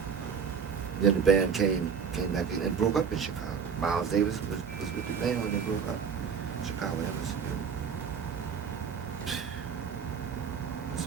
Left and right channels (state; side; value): quieter; left; 6.5 dB